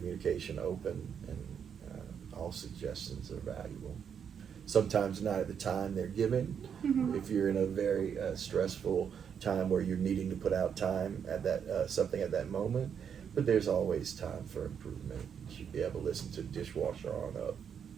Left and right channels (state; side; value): quieter; left; 7.6 dB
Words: open, and all suggestions are valuable. Sometimes not at the time they're given. If you're in a very stressful time where you're needing to put out time at that something at that moment, but there's always time for improvement. You should be able to listen to dishwasher on up.